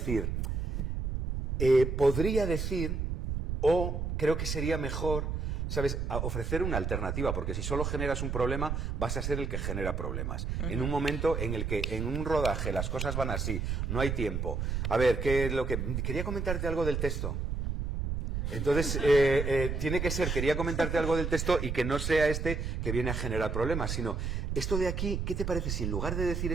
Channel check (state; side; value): noise; right; rumble, 2 dB below the sound